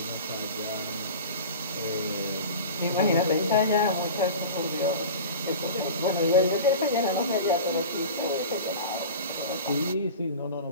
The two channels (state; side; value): inverted; both; correlation -0.34